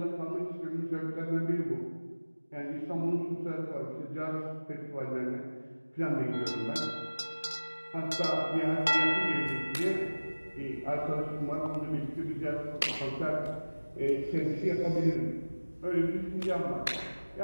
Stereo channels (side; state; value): both; inverted; correlation -1.00